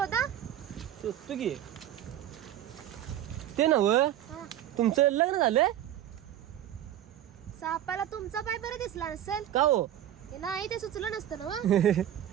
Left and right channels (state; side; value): quieter; left; 11.6 dB